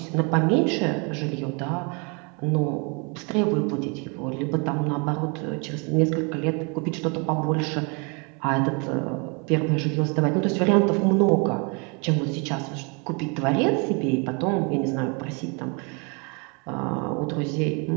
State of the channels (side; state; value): left; quieter; 33.0 dB